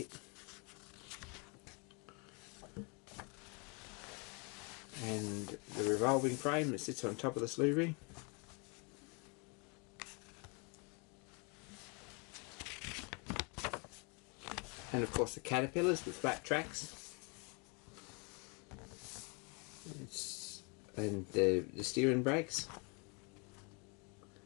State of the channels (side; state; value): right; quieter; 32.9 dB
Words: And the revolving frame that sits on top of the slew ring. And of course the caterpillars with flat tracks. And the steering brakes.